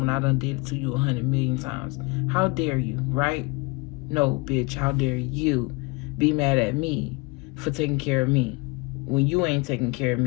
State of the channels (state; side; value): quieter; right; 26.5 dB